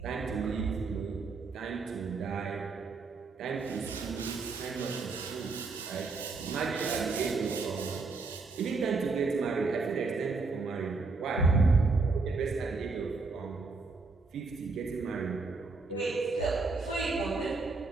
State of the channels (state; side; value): quieter; left; 4.0 dB